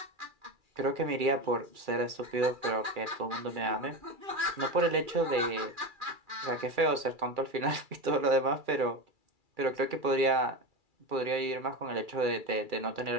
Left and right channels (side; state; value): left; late; 2.3 ms